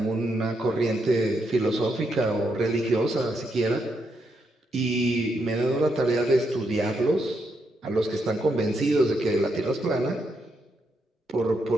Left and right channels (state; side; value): normal; both; correlation 0.80